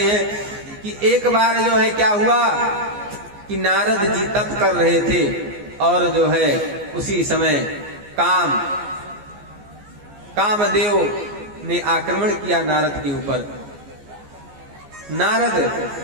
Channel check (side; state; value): left; late; 14 ms